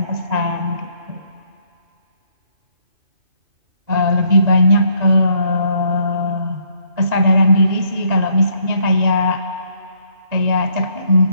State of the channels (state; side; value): late; left; 1.9 ms